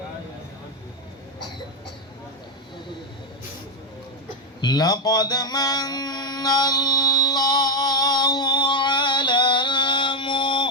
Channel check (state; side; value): normal; both; correlation 0.05